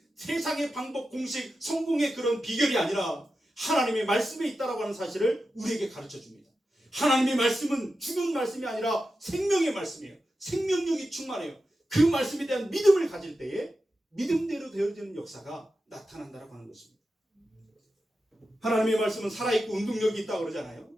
세상의 방법, 공식, 성공의 그런 비결이 아니라 하나님의 말씀에 있다라고 하는 사실을 우리에게 가르쳐줍니다. 하나님의 말씀은 죽은 말씀이 아니라 생명의 말씀이에요. 생명력이 충만해요. 그 말씀에 대한 믿음을 가질 때에 믿음대로 되어지는 역사가 나타난다라고 하는 것입니다. 하나님의 말씀은 살아있고 운동력이 있다고 그러잖아요.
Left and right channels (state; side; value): normal; both; correlation 0.91